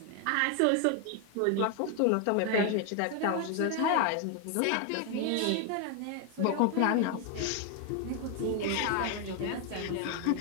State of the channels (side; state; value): both; different; correlation 0.01